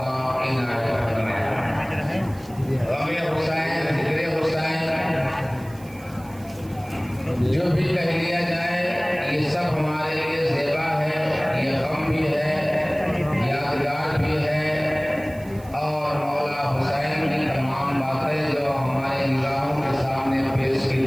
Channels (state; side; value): noise; right; hiss, 23 dB below the sound